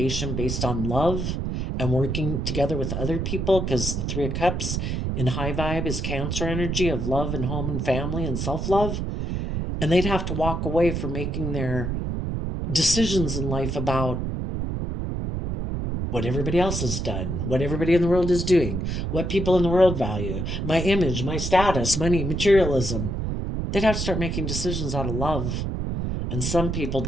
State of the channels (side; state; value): right; noise; rumble, 2 dB below the sound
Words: based on love and working together with other people, because the Three of Cups in high vibe is Cancer energy of love and home and family and self-love. And they'd have to walk away from making their decisions in life about what everybody else has done, what everybody in the world is doing, what people in the world value, my image, my status, money, materialism. They'd have to start making decisions out of love. And some people